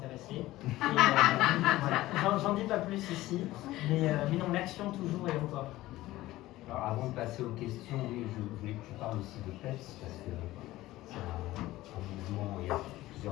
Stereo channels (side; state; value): right; quieter; 16.8 dB